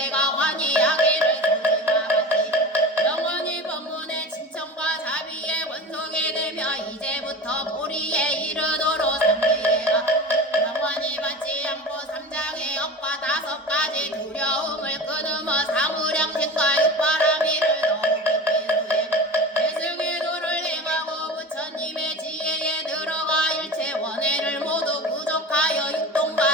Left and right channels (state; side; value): normal; both; correlation 0.32